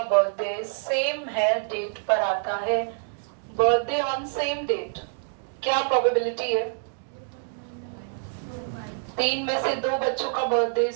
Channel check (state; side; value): silent; left; digital silence